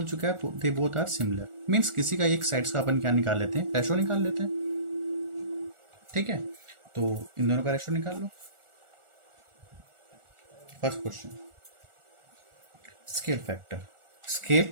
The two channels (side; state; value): left; late; 1.4 ms